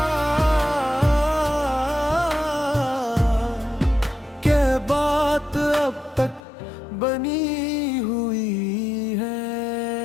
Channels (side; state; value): right; drops out; at 6.4 s